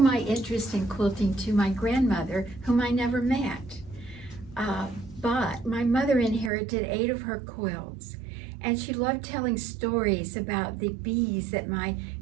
interest in quilting to my grandmother, whom I never met. But my mother inherited 8 of her quilts, and she loved telling stories about the bees that my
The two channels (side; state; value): left; drops out; at 6.5 s